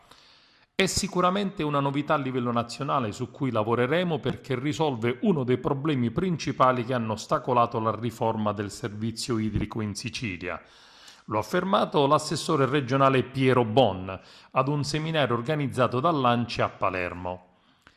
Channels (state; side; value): identical; both; correlation 1.00